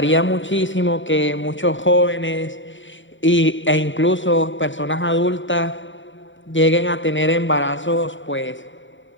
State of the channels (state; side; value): late; right; 0.55 ms